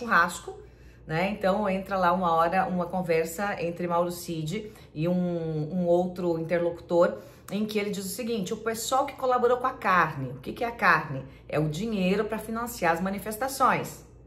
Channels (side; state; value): both; identical; correlation 1.00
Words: né? Então entra lá uma hora uma conversa entre Mauro Cid e um outro interlocutor, em que ele diz o seguinte: o pessoal que colaborou com a carne, o que é a carne? É o dinheiro para financiar as manifestações.